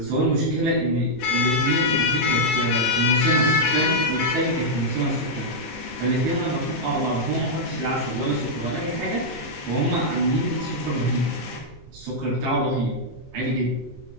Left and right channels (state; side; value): noise; right; rumble, 21 dB below the sound